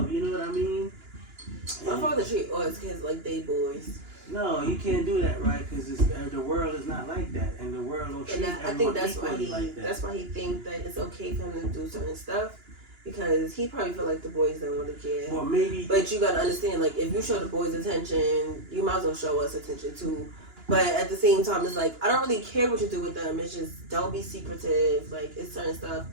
you know what I mean? My father treat all his kids like they boys. No, you can't do that, right? Because the world is not like that, and the world don't treat And I everyone think that's why equally like that. that's why he think that it's okay for him to do certain stuff, because he probably feel like the boys don't want to care. Well, maybe. But you gotta understand, like, if you show the boys attention, you might as well show us attention too. But at the same time, it's like, I don't really care what you do with them. It's just, don't be secretive. Like, it's certain stuff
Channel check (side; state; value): left; late; 2.9 ms